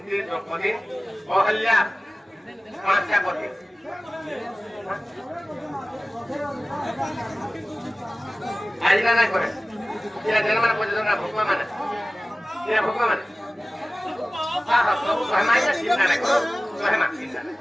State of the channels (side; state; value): both; normal; correlation 0.97